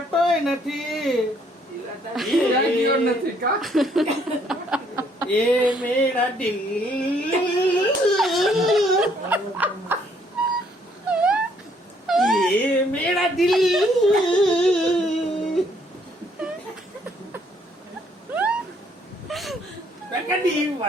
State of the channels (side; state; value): both; normal; correlation 0.66